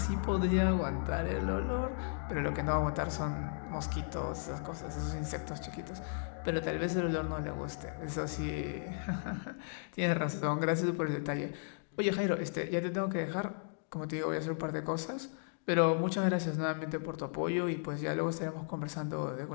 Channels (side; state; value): right; silent; digital silence